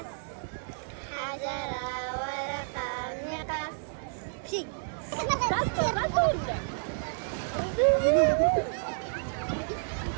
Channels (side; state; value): left; silent; digital silence